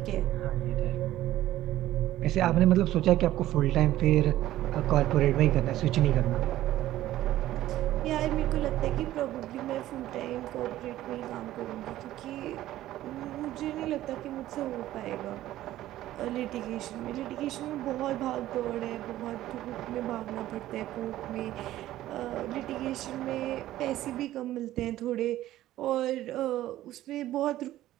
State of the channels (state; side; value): quieter; left; 14.4 dB